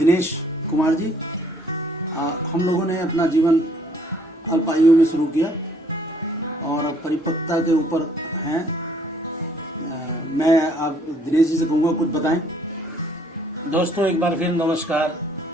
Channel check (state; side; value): normal; both; correlation 0.63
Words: कुमार जी, हम लोगों ने अपना जीवन अल्प आयु में शुरू किया और अब परिपक्वता के ऊपर हैं। मैं आप दिनेश जी से कहूँगा कुछ बताएं। दोस्तों एक बार फिर नमस्कार।